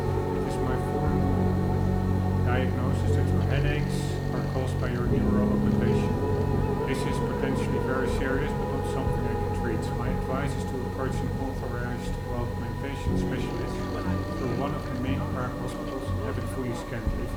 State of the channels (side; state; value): both; identical; correlation 1.00